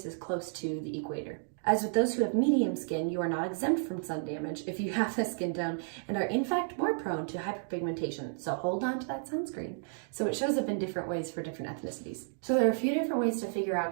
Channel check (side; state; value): left; silent; digital silence